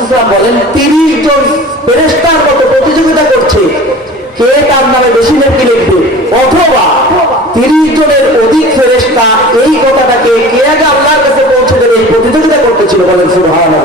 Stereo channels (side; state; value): both; normal; correlation 0.40